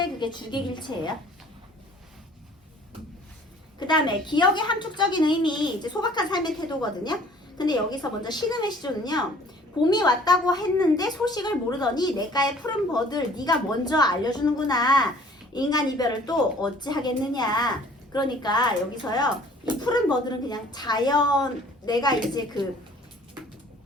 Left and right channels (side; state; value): both; normal; correlation 0.53